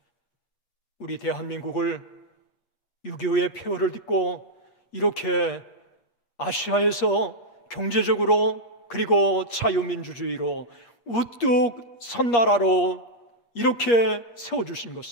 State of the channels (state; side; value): late; right; 8.4 ms